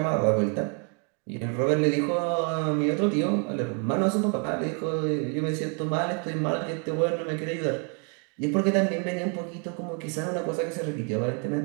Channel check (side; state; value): left; quieter; 37.6 dB